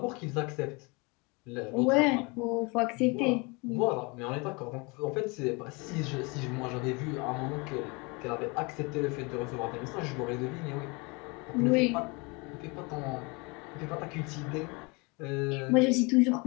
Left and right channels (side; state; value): right; quieter; 28.4 dB